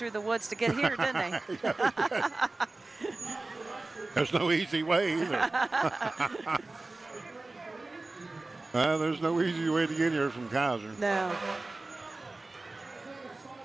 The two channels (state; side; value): quieter; left; 3.2 dB